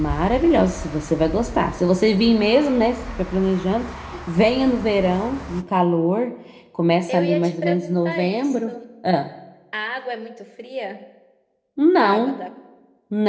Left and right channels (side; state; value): both; identical; correlation 1.00